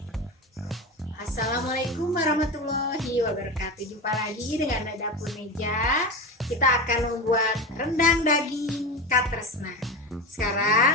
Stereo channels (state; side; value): normal; both; correlation 0.23